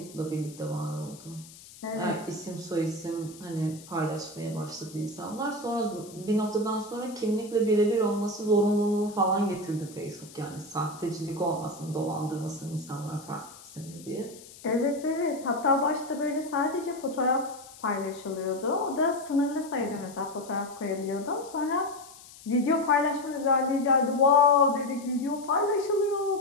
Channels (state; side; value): noise; left; hiss, 19 dB below the sound